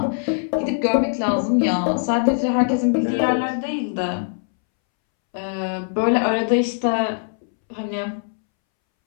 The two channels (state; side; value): silent; right; 65 dB below the other